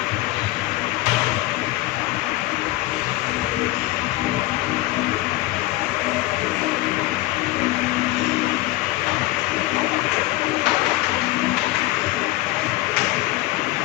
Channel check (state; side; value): quieter; right; 18.3 dB